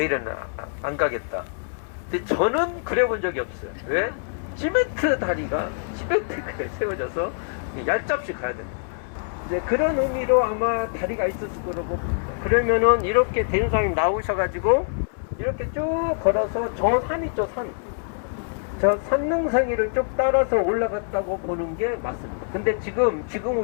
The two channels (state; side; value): silent; right; 62 dB below the other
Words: 안 가겠다. 근데 저는 그래 본 적이 없어요. 왜? 시멘트가 세워져서 얄잡이 가야 됩니다. 이제 그런 의미로 아마 다리가 있었을 거라고 봅니다. 그러면은 이렇게 대림사님 나오셔가지고 이렇게 쭉 걸어서 저 산 있죠, 저 산능성이를 쭉 따라서 올라갔다고 보는 게 맞습니다. 근데 지금